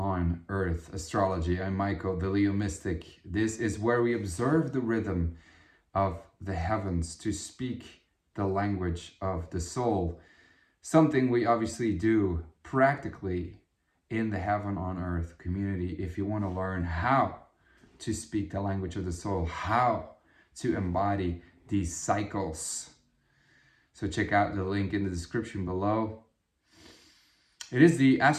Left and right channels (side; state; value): both; identical; correlation 1.00